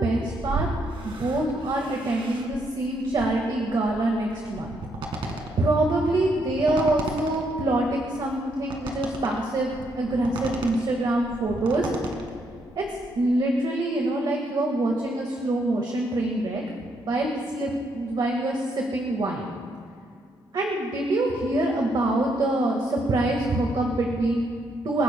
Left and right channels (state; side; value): normal; both; correlation 0.75